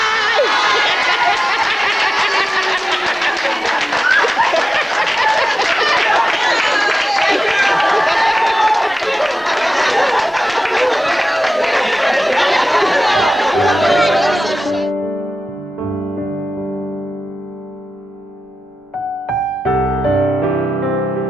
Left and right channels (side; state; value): both; normal; correlation 0.94